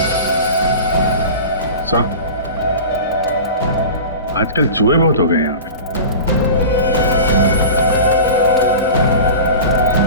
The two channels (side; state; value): both; inverted; correlation -0.34